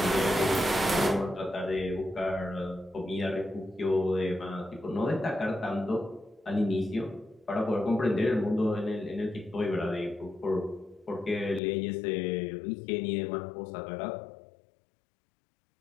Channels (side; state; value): right; drops out; at 11.6 s